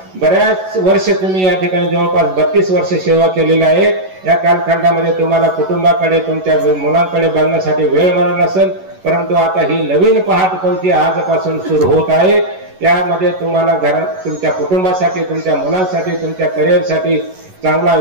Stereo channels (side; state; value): left; late; 11 ms